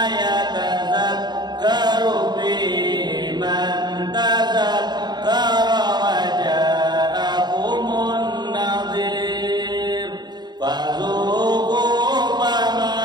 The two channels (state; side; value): late; left; 0.20 ms